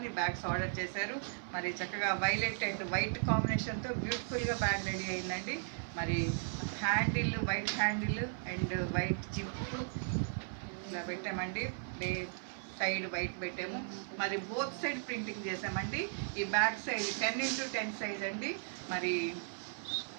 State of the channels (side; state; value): left; silent; 53 dB below the other